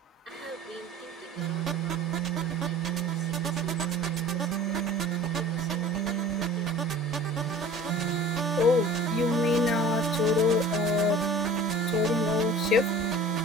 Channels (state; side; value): normal; both; correlation 0.44